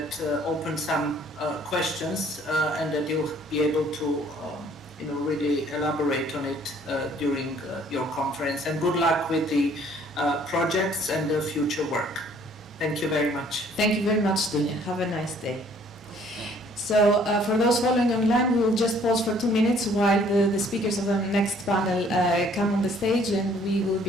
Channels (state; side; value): normal; both; correlation 0.59